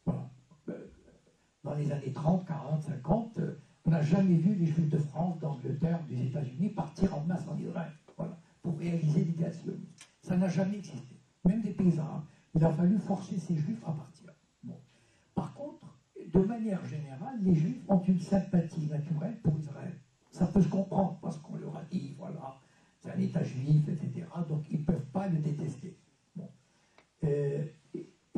Voilà. Dans les années 30, 40, 50, on n'a jamais vu les Juifs de France, d'Angleterre, des États-Unis partir en masse en Israël, voilà, pour réaliser l'idée sioniste. Ça n'a jamais existé. Même des paysans, il a fallu forcer ces Juifs à partir. Bon. Par contre, de manière générale, les Juifs ont une sympathie naturelle pour Israël. Ça peut se comprendre parce qu'on leur a dit, voilà, c'est un État juif, etc. Donc ils ne peuvent pas le détester. Bon.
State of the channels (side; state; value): both; identical; correlation 1.00